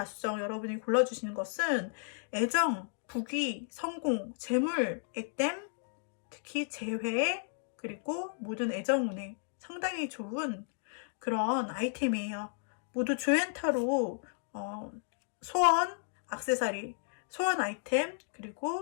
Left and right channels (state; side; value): silent; right; digital silence